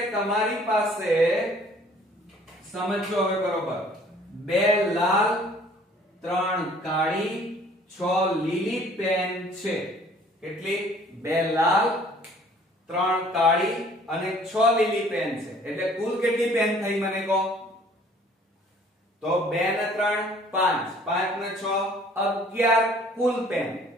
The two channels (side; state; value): both; normal; correlation 0.55